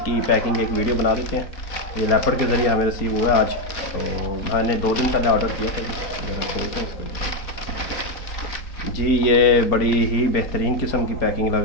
पैकिंग एक वीडियो बना देते हैं। ये लेपर्ड के ज़रिए हमें रिसीव हुआ आज, तो मैंने 2 दिन पहले ऑर्डर किया था जी। ये बड़ी ही बेहतरीन किस्म की पैकिंग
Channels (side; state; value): right; late; 4.3 ms